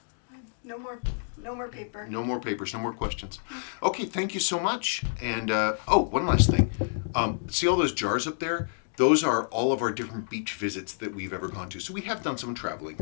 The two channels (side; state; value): right; silent; digital silence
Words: No more paper. No more papers, no more questions. Okay, thank you so much. And, one last thing. See all those jars up there? Those are all of our different beach visits that we've ever gone to. So we have done some traveling